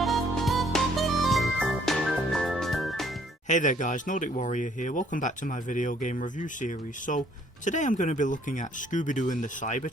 Hey there guys, Nordic Warrior here, welcome back to my video game review series. So, today I'm going to be looking at Scooby-Doo and the Cyber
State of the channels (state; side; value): normal; both; correlation 0.63